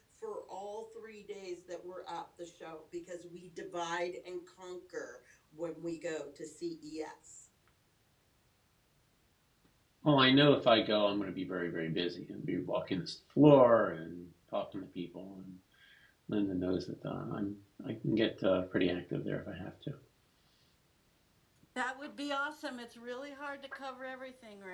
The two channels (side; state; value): both; identical; correlation 1.00